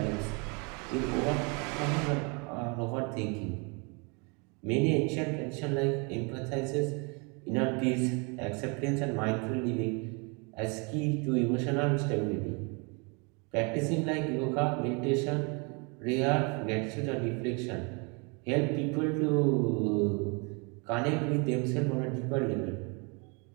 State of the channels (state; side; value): quieter; left; 32.2 dB